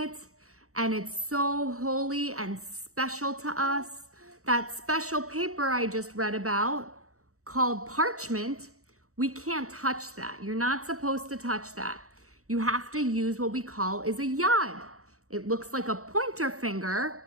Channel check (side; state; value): left; late; 0.65 ms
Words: and it's so holy and special to us, that special paper I just read about, called parchment, We can't touch that. You're not supposed to touch that. You have to use what we call is a yad. It looks like a pointer finger,